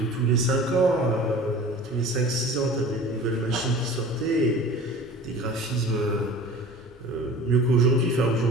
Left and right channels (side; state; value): both; normal; correlation 0.41